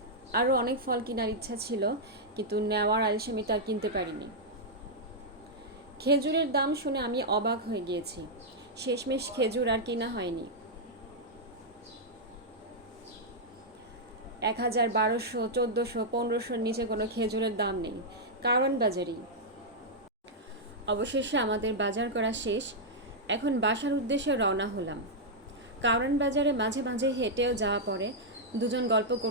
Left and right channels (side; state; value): both; normal; correlation -0.05